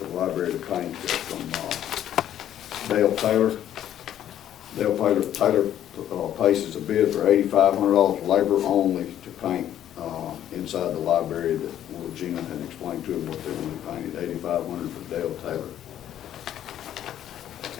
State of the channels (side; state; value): right; quieter; 11.1 dB